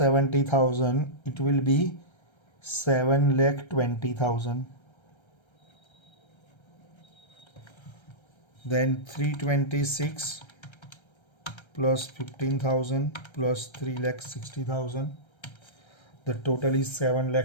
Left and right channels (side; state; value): right; late; 1.3 ms